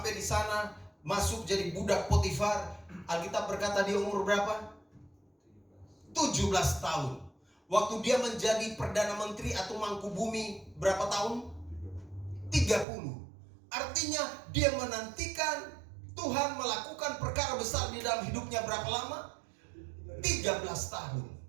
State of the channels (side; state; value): left; drops out; at 12.9 s